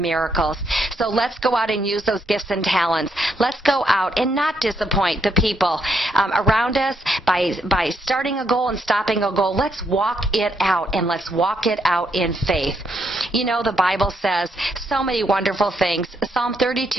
So let's go out and use those gifts and talents. Let's go out and not disappoint the people around us by starting a goal and stopping a goal. Let's walk it out, and let's walk it out in faith. The Bible says so many wonderful things. Psalm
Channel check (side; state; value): both; normal; correlation 0.76